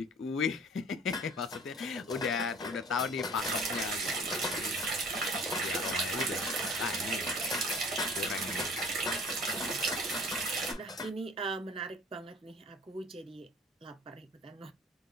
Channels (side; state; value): both; normal; correlation 0.47